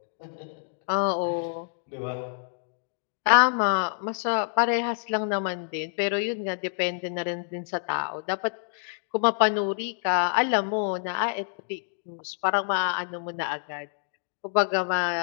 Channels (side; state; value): right; silent; digital silence